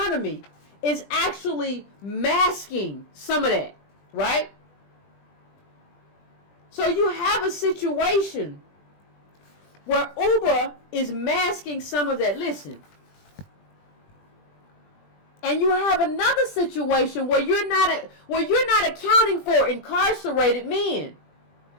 is actually masking some of that, right? So you have a situation where Uber is masking some of that. Listen. And you have another situation where you're not accounting for incarcerated men.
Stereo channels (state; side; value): late; right; 20 ms